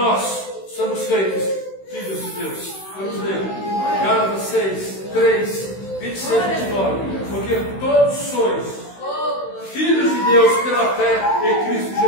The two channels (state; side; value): late; right; 16 ms